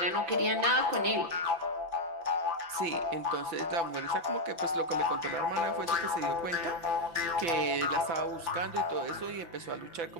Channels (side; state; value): left; late; 5.9 ms